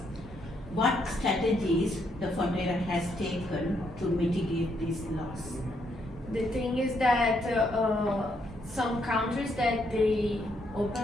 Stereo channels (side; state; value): both; normal; correlation 0.75